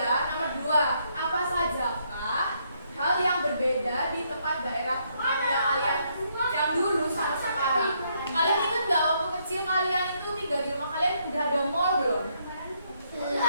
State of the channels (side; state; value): both; inverted; correlation -0.73